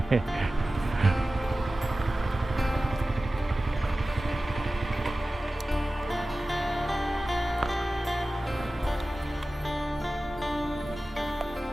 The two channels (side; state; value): both; normal; correlation 0.96